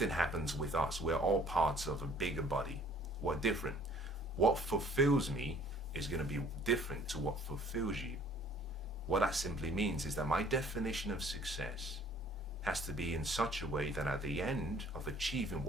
happens with us. We're all parts of a bigger body. We're different. What fulfills me is going to be different to what fulfills you. What that simply means is that my definition of success has to be in such a way that at the end of achieving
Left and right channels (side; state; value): both; normal; correlation 0.55